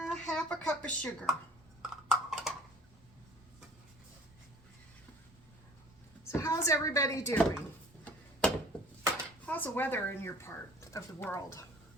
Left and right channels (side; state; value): both; normal; correlation 0.49